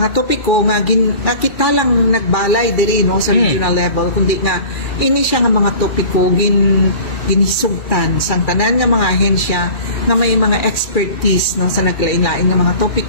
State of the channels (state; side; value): late; right; 2.4 ms